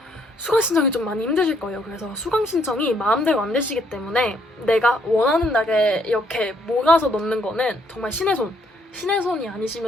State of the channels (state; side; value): normal; both; correlation 0.69